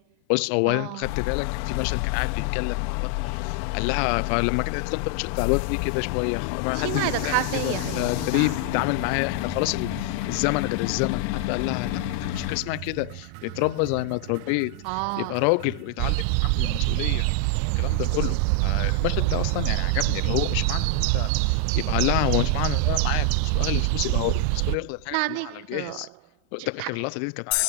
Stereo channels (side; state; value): both; different; correlation 0.00